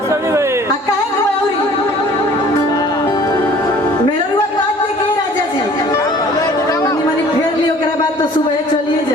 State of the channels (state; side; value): normal; both; correlation 0.51